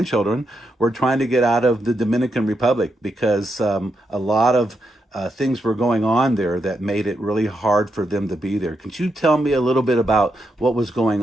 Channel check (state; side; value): normal; both; correlation 0.83